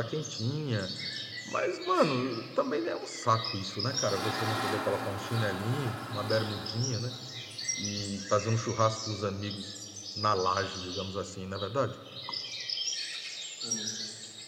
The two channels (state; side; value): identical; both; correlation 1.00